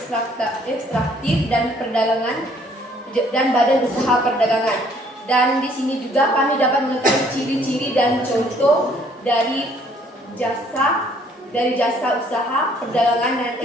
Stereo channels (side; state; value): both; normal; correlation 0.61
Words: dan badan usaha perdagangan. Dan di sini juga kami dapat mengetahui ciri-ciri dan contoh dari jasa usaha perdagangan dan